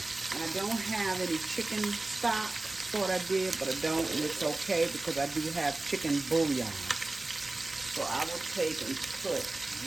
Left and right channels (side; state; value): left; quieter; 3.0 dB